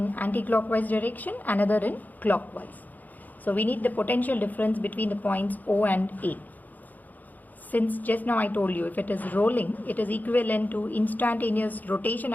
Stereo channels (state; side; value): late; right; 0.082 ms